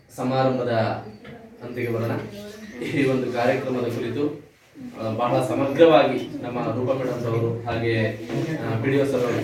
ಸಮಾರಂಭದ ಅಂತಿಗೆ ಬರೋಣ. ಈ ಒಂದು ಕಾರ್ಯಕ್ರಮದ ಕುರಿತು ಬಹಳ ಸಮಗ್ರವಾಗಿ ನಮ್ಮ ರೂಪ ಮೇಡಮ್ ಅವರು ಹಾಗೆ PDO ಸರ್ ಅವರು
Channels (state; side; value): identical; both; correlation 1.00